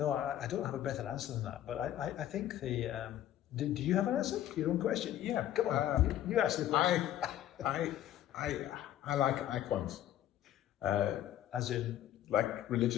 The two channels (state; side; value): quieter; right; 12.1 dB